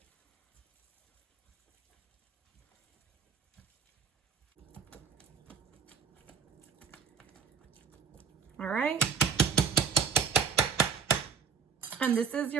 All right. And this is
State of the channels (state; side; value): quieter; left; 6.2 dB